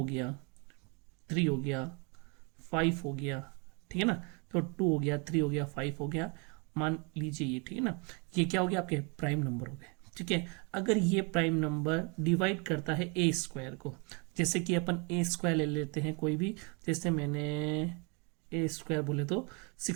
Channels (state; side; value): quieter; left; 32.9 dB